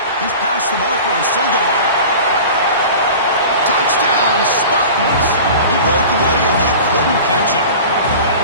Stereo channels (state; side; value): inverted; both; correlation -0.37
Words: He's past the marker and still going. Touchdown, Spartans. He broke away and they couldn't catch him.